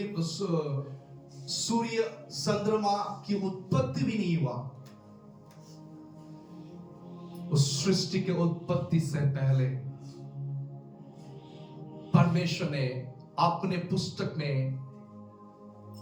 सूर्य चंद्रमा की उत्पत्ति भी नहीं हुआ। उस सृष्टि के उत्पत्ति से पहले परमेश्वर ने अपने पुस्तक में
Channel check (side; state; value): both; identical; correlation 1.00